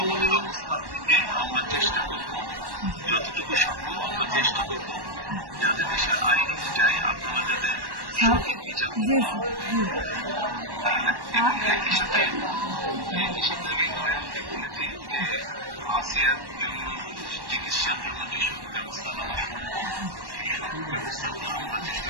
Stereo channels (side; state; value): left; late; 1.1 ms